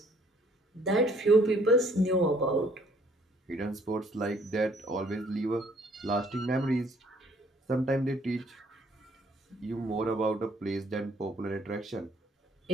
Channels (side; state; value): both; normal; correlation 0.62